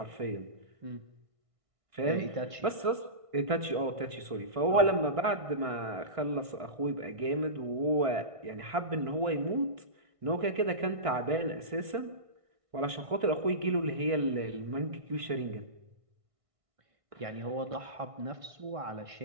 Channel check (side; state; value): left; late; 1.6 ms